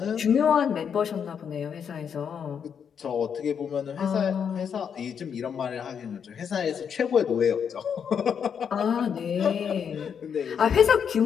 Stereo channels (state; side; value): quieter; right; 7.4 dB